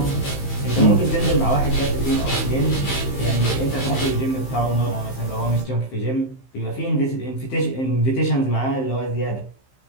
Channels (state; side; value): late; right; 15 ms